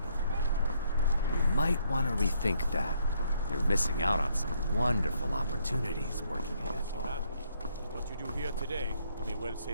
You might want to rethink that. You're missing out on some wonderful opportunities working ahead. What you do here today may well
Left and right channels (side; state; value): both; inverted; correlation -0.69